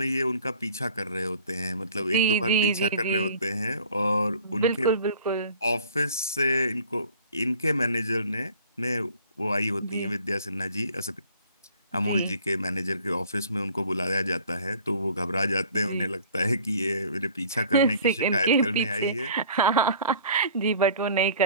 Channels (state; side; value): inverted; both; correlation -0.50